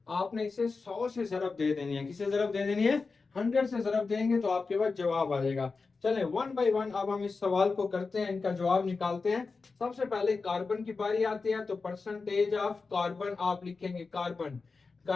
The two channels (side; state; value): right; quieter; 4.3 dB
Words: आपने इसे 100 से ज़रब दे देनी है, किसे ज़रब दे देनी है, 100 से ज़रब देंगे तो आपके पास जवाब आ जाएगा। चलें वन बाय वन अब हम इस सवाल को करते हैं, इनका जवाब निकालते हैं। सबसे पहले कार्बन की बारी आती है, तो परसेंटेज ऑफ कार्बन आप लिखेंगे, कार्बन,